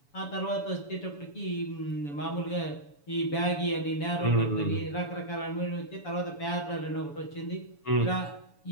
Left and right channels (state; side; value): late; right; 7.0 ms